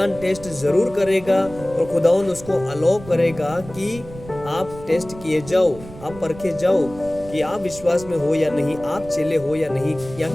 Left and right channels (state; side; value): noise; right; rumble, 16 dB below the sound